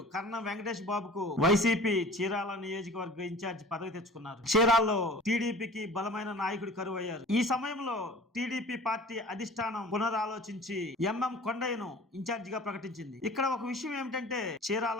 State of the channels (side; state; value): both; normal; correlation 0.43